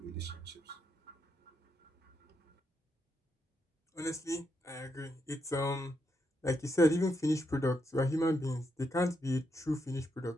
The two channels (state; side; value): normal; both; correlation 0.81